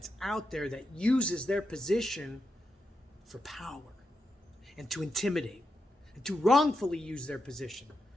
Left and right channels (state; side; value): normal; both; correlation 0.86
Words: out there that uses their position for power and to intimidate and to wrongfully use their position.